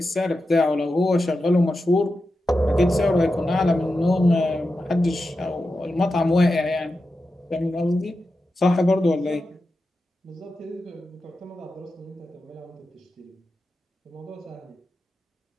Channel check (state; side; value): normal; both; correlation 0.90